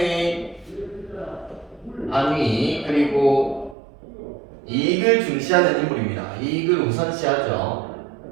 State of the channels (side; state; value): left; drops out; at 3.8 s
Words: 안위 그리고 이익을 중시하는 인물입니다. 이익을 우선시하죠.